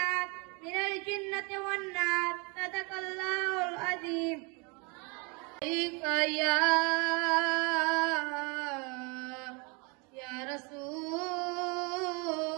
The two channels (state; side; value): quieter; left; 31.0 dB